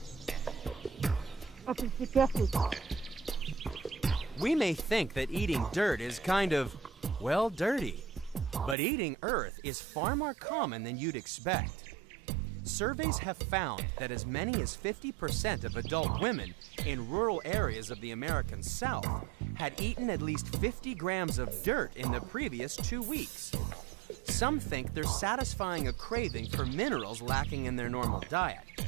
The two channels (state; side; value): drops out; left; at 8.8 s